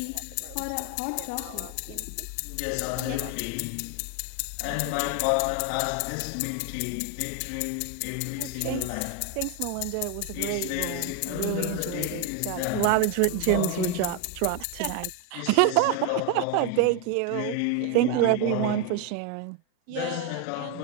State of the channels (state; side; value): different; both; correlation 0.01